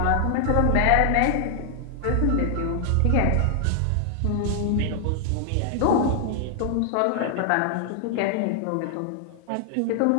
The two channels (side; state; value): both; different; correlation 0.00